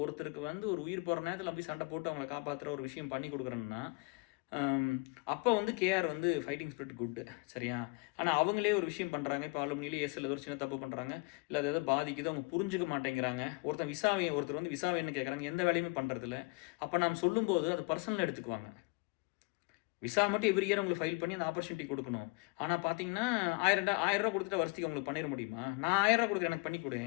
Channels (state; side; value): quieter; right; 29.8 dB